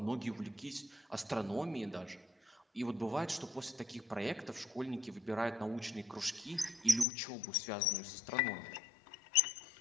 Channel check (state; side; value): drops out; right; at 7.1 s